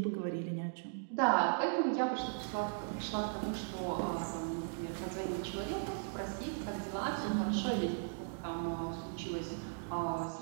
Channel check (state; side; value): silent; left; digital silence